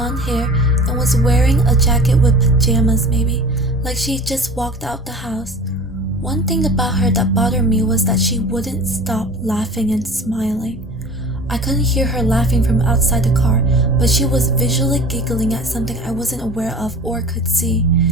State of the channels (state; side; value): normal; both; correlation 0.39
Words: hair, and was wearing a jacket with pajamas maybe, like she just walked out the house. One thing about her that bothered me was that she wouldn't stop laughing and smiling. I couldn't hear her laughing from outside the car, but she was visually giggling at something I wasn't aware of or could see,